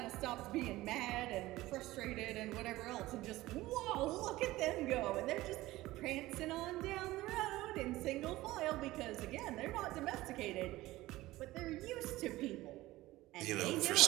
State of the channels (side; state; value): left; quieter; 17.7 dB